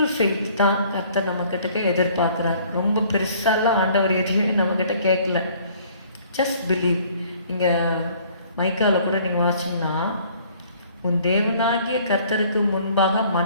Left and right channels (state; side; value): inverted; both; correlation -0.57